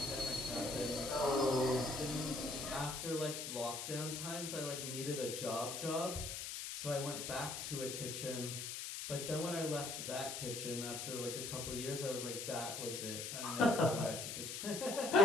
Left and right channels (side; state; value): left; noise; hiss, 5 dB below the sound